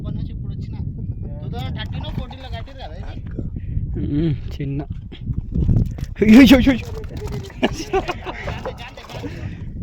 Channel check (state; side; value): identical; both; correlation 1.00